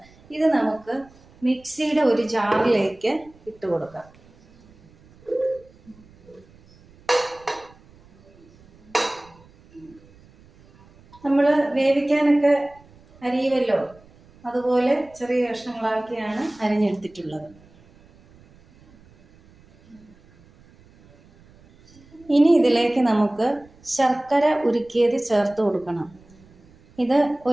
ഇത് നമുക്ക് മിക്സിയുടെ ഒരു ജാറിലേക്ക് ഇട്ട് കൊടുക്കാം. നമ്മൾ വേവിക്കാനൊക്കെ അരിയുമല്ലോ, അതുപോലെ ചെറിയ കഷ്ണങ്ങളാക്കിയാണ് അരിഞ്ഞെടുത്തിട്ടുള്ളത്. ഇനി ഇതിലേക്ക് നമുക്ക് ശർക്കര ഉരുക്കിയത് ചേർത്ത് കൊടുക്കണം. ഇത്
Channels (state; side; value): noise; right; rumble, 27 dB below the sound